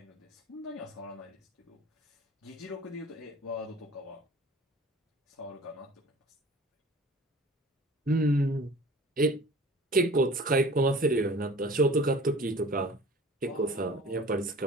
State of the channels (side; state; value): both; normal; correlation 0.45